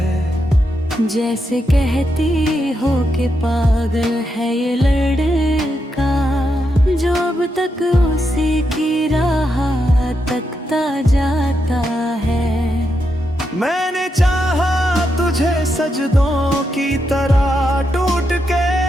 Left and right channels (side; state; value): both; normal; correlation 0.83